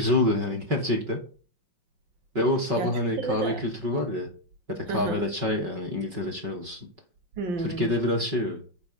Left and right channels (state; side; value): late; left; 5.3 ms